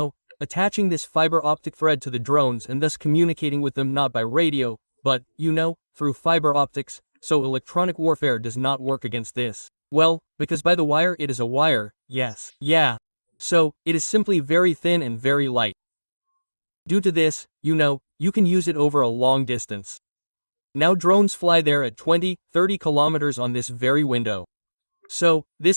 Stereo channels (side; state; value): both; inverted; correlation -1.00